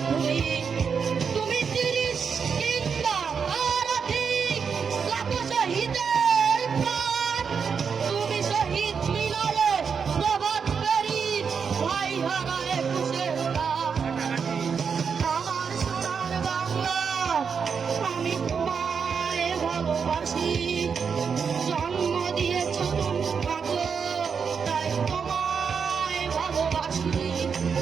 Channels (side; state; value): left; quieter; 6.2 dB